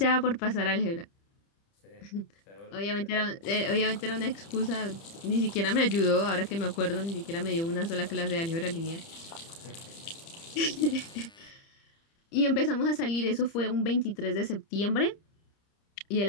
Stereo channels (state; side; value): late; right; 30 ms